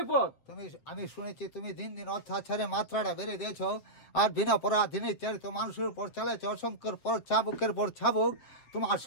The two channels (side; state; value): right; late; 7.8 ms